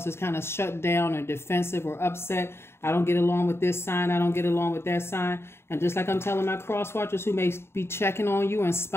as kind of shut down or defensive or upset. I don't get along with this sign. I don't get along with that sign. And just like I'm telling my cross watchers who may be checking on you and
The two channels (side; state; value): right; late; 0.12 ms